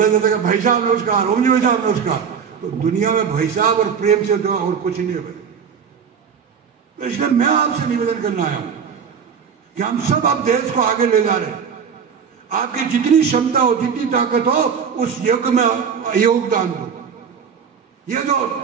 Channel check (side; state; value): left; quieter; 6.9 dB